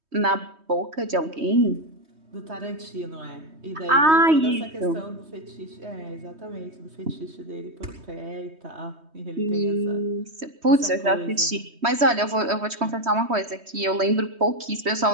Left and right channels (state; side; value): late; left; 3.2 ms